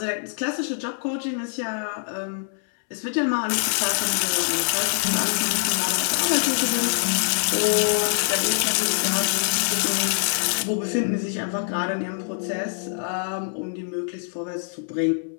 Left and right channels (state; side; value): silent; right; 62 dB below the other